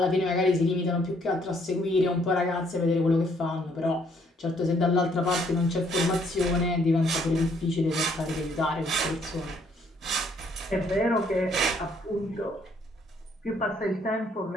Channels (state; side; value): normal; both; correlation 0.67